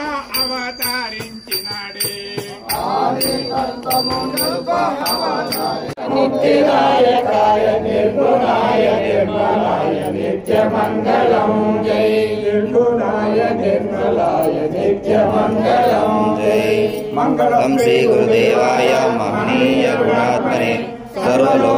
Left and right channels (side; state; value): both; identical; correlation 1.00